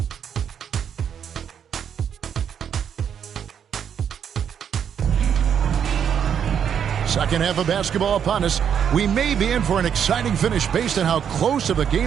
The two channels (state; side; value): quieter; left; 8.2 dB